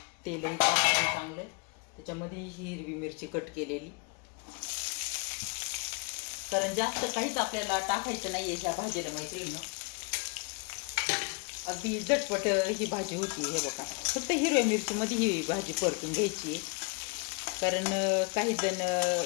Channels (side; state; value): right; quieter; 32.8 dB